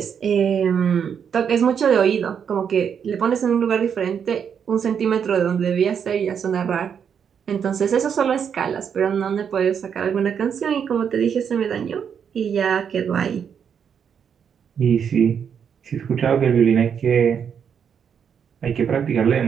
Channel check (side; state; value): left; quieter; 7.5 dB